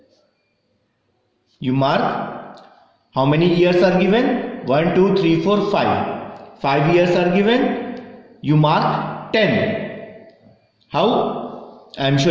You mark how many years are given? 1, 2, 3, 4, 5. 5 years are given. You mark 10. How? I am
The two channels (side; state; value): both; identical; correlation 1.00